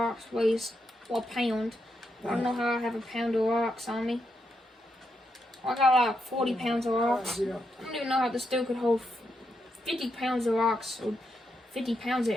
weighs a pound. I don't know how I have a pound of rocks on me. I got like 40 pounds of rocks. I don't even know how this dude could hold 50 pounds of rocks, or 50 pounds of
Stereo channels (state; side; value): normal; both; correlation 0.82